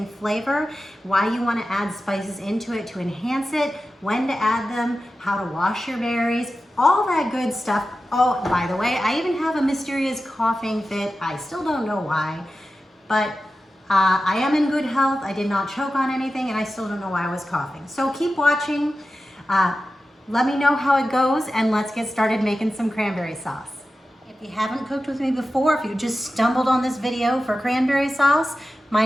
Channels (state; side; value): normal; both; correlation 0.93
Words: flavor, why you want to add spices into it to enhance it, when to add them, how to wash your berries, all that good stuff. Oh, by the way, I even have a mysterious coughing fit. I still don't know why, but I am in good health. I did not choke on anything, and I still don't know why I was coughing. So keep watching. Let me know how it goes, and let's get started making some cranberry sauce. If you haven't cooked with me before, if you just stumbled on this video for cranberry sauce, my